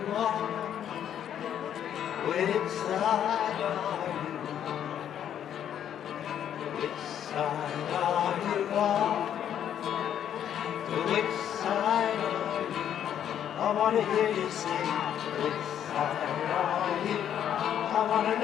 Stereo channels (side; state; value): right; quieter; 9.8 dB